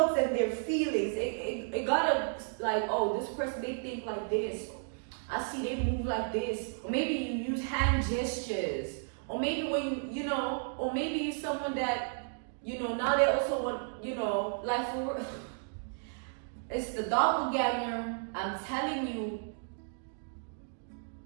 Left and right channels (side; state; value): left; silent; digital silence